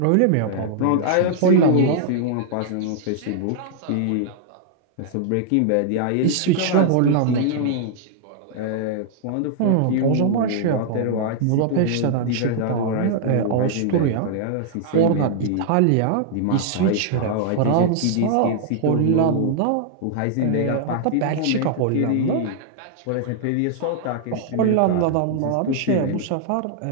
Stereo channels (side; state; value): both; different; correlation -0.01